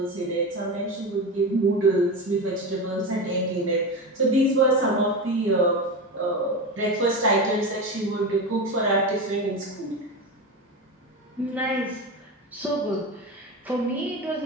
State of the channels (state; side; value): normal; both; correlation 0.21